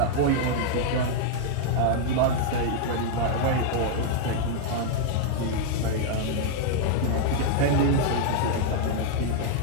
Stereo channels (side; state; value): both; different; correlation -0.01